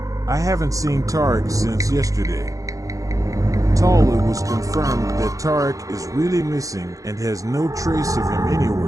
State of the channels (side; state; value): left; late; 0.16 ms